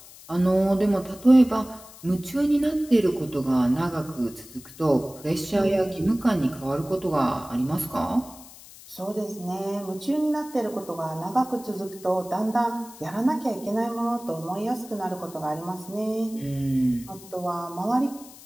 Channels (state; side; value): noise; left; hiss, 19 dB below the sound